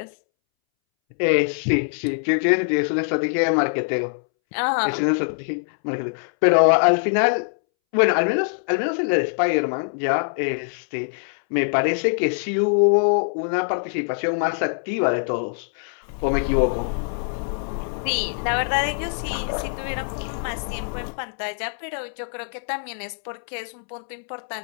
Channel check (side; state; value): right; silent; 63 dB below the other